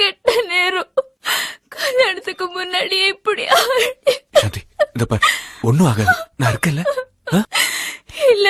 நேரம் கல்யாணத்துக்கு முன்னாடியே இப்படி சாந்தி, இத பாரு, ஒண்ணும் ஆகாது, நான் இருக்கல.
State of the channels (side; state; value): both; identical; correlation 1.00